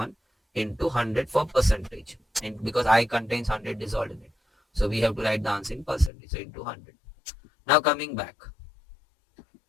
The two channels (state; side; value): drops out; right; at 6.1 s